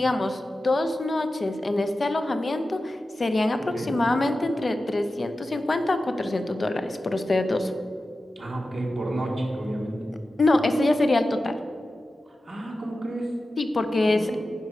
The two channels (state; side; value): normal; both; correlation 0.93